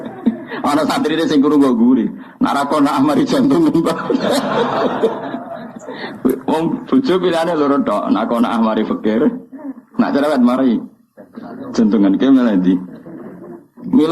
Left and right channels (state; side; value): identical; both; correlation 1.00